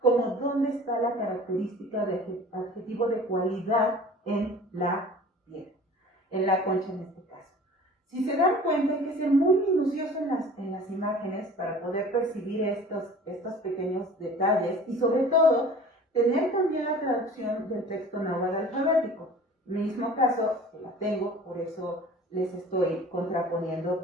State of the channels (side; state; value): both; normal; correlation 0.44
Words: como dónde está la característica de adjetivo de cualidad en la piedra, en la concha en este caso. Si se dan cuenta, hay que ser muy minucioso en las imágenes para poder percibir estos pequeños detalles, y sobre todo tener también la traducción del texto náhuatl alfabético. En el mismo caso, que la tengo, por eso les estoy contraponiendo